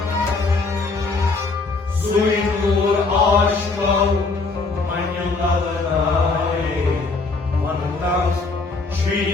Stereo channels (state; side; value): quieter; right; 3.8 dB